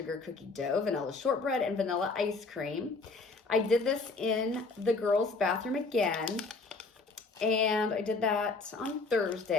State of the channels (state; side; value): quieter; right; 3.9 dB